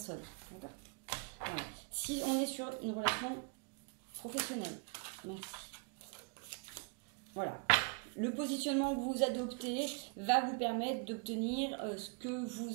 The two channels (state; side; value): quieter; left; 35.7 dB